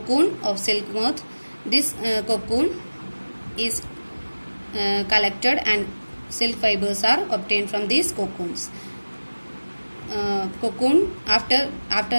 of silk moth. This cocoon is collected and silk fibers are obtained from these cocoons. Cocoon, after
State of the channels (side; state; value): both; inverted; correlation -1.00